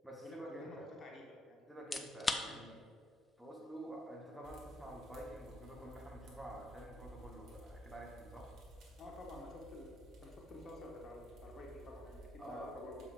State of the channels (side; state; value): both; normal; correlation 0.77